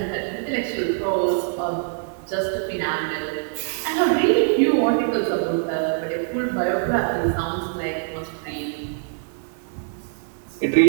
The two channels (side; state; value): left; silent; digital silence